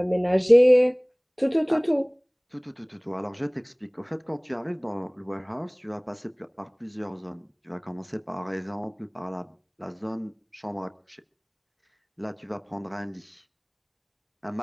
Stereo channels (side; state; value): both; identical; correlation 1.00